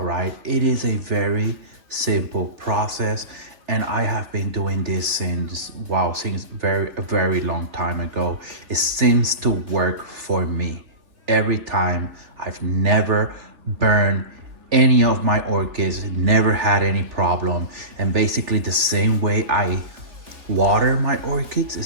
right? It is a very simple process, and I have been doing this since a very long time ago. It seems to work for me every time. I've never burned any of my orchids, never had any problem, and basically the same way I water my orchids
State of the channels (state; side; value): late; left; 3.4 ms